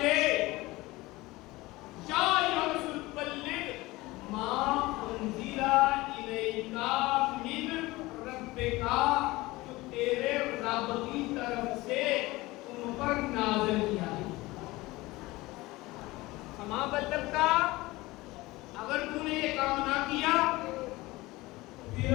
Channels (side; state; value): right; quieter; 20.3 dB